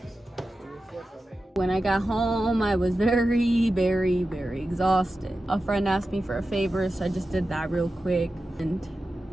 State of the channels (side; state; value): both; normal; correlation 0.92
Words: When I got home, I was very, very, very exhausted. A friend asked me for a favor, so I just did that real quick. And